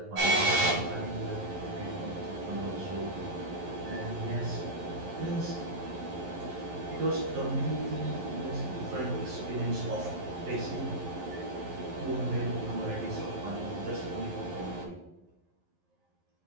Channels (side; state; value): left; late; 11 ms